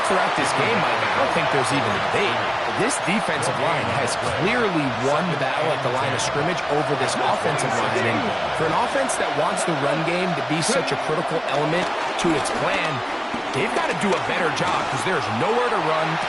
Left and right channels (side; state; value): both; identical; correlation 1.00